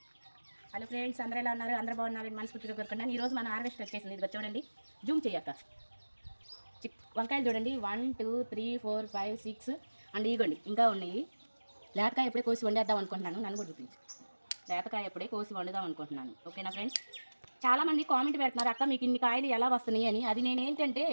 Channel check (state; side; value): inverted; both; correlation -1.00